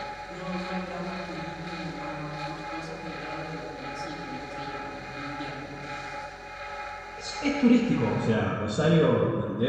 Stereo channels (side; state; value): both; identical; correlation 1.00